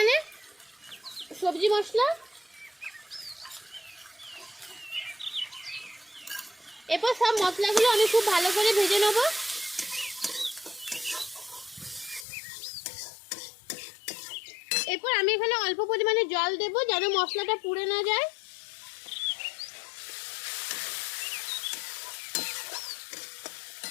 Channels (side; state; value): right; drops out; at 12.2 s